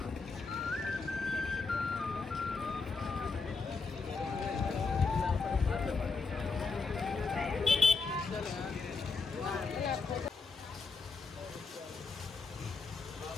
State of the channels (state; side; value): quieter; right; 4.4 dB